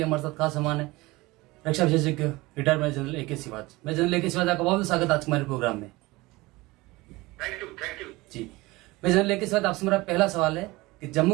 हमारे साथ खास मेहमान है रक्षा विशेषज्ञ retired major general A K. Siwach. मैं जनरल ए.के. सिवाज, आपका बहुत स्वागत आज हमारे प्रोग्राम में। थैंक यू जी, मैं जनरल ए.के. सिवाज, आपसे मेरा पहला सवाल है कि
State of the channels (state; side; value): quieter; left; 21.2 dB